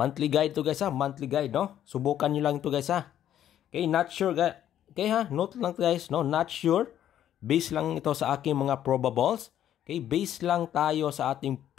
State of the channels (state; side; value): quieter; right; 11.0 dB